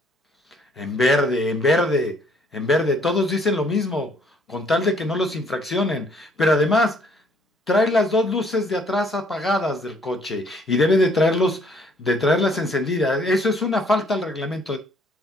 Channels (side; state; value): both; normal; correlation 0.63